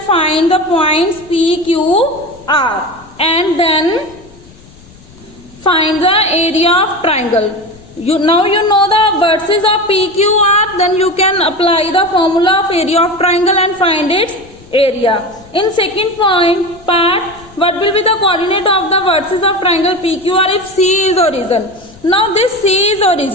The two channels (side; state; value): left; noise; rumble, 24 dB below the sound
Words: find the points P, Q, R, and then find the area of triangle. Now you know the vertices of PQR, then you can apply the formula of area of triangle and find its area. In second part, what will be the coordinate of the vertices of triangle PQR if C is origin? Now this C is